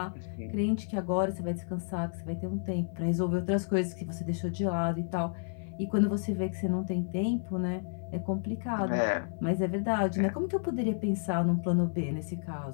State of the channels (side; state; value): right; silent; 57 dB below the other